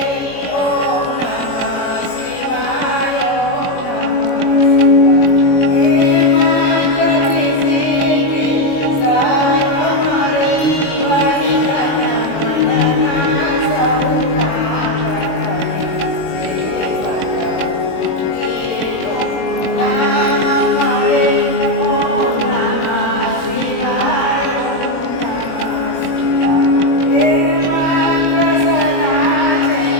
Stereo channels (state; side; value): late; right; 21 ms